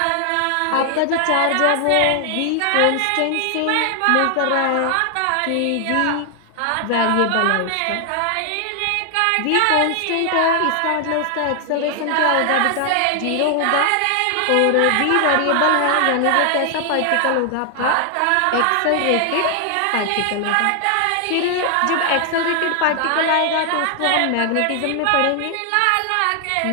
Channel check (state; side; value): different; both; correlation 0.00